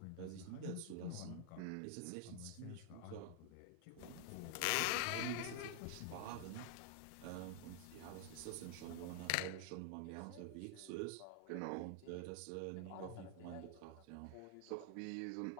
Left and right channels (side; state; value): both; different; correlation 0.00